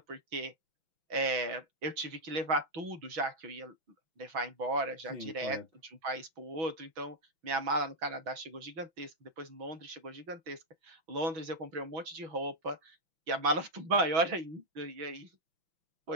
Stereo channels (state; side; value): late; left; 6.2 ms